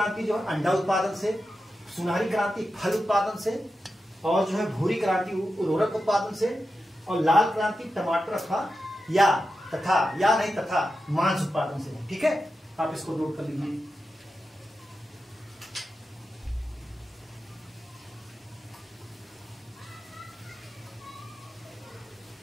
जो है अंडा उत्पादन से, सुनहरी क्रांति फल उत्पादन से, और जो है भूरी क्रांति उर्वरक उत्पादन से, और लाल क्रांति टमाटर तथा मांस उत्पादन से, ठीक है। आप इसको नोट कर लीजिए।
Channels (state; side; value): normal; both; correlation 0.90